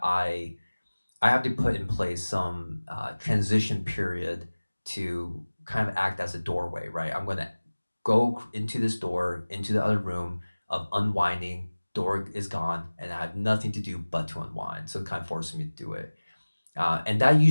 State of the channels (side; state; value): both; inverted; correlation -1.00